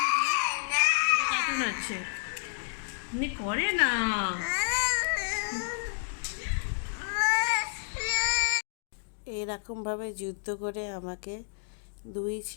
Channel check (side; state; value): right; silent; digital silence